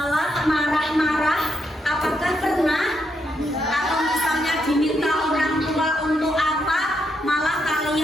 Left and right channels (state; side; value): normal; both; correlation 0.79